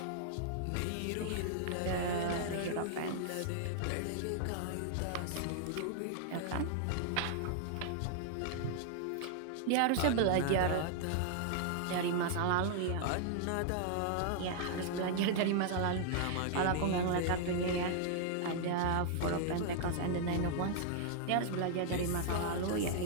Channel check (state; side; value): different; both; correlation -0.01